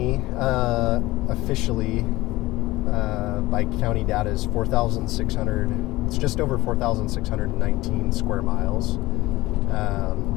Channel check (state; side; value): quieter; right; 18.8 dB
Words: officially by county data is 4,600. It's just over 4,619 square miles.